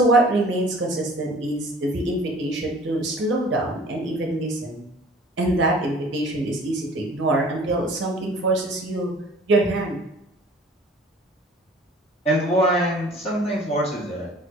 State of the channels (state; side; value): normal; both; correlation 0.49